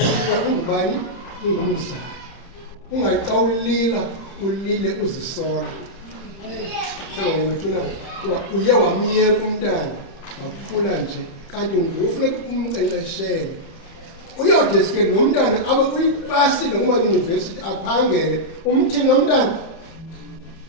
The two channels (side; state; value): right; late; 30 ms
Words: ungubani? Ungumzali. Ungathi xa ulila ulile uzisola. Sengawethuna kuba uye wamyeka umntana wakhula nje, kanti ngufuneka umnkcenkceshele. Uyawudeske lo mntana abe uyipasile kuma-yunivesithi aphangele, umthini lo mntana